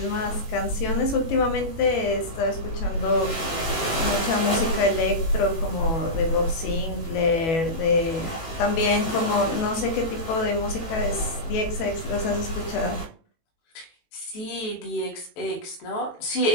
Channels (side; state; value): right; late; 18 ms